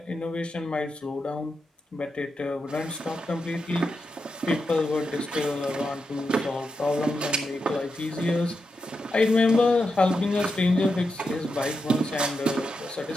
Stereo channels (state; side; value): normal; both; correlation 0.86